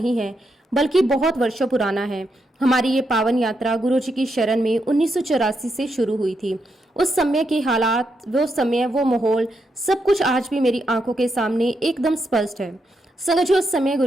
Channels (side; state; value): both; normal; correlation 0.82